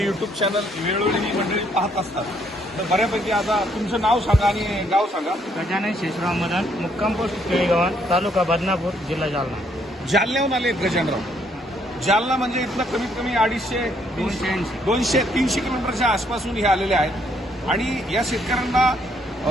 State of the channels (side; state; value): both; normal; correlation 0.69